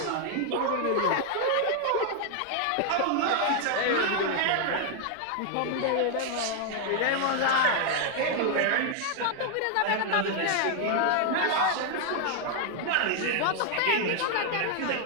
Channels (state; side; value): different; both; correlation 0.00